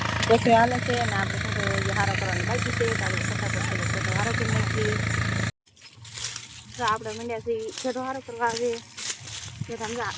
પછી હાલે છે અને આપણે ફોટો હારો કરવાની બાકી છે, આપણે ફટાફટ ફોટો હારો કરી નાખીએ। તો આપણે મંડ્યાથી ફોટો હારો કરવા આવે કે સમજા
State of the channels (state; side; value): identical; both; correlation 1.00